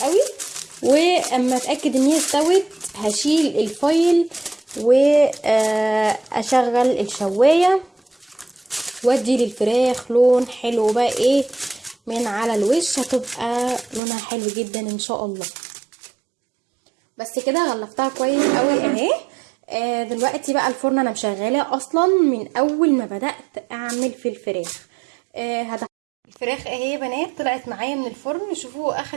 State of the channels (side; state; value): left; drops out; at 14.0 s